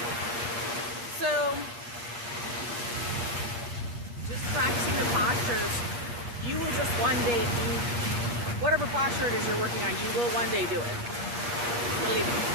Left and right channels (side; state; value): left; late; 8.4 ms